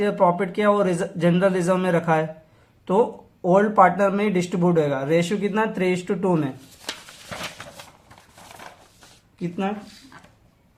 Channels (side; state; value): both; identical; correlation 1.00